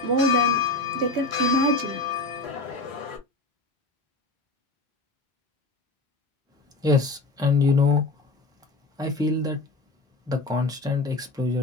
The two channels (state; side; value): quieter; right; 3.1 dB